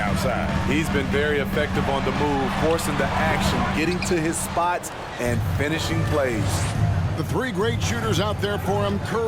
He's been very effective on the move, forcing the action, getting to his spots, and finishing plays. The three great shooters out there for him,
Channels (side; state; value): both; identical; correlation 1.00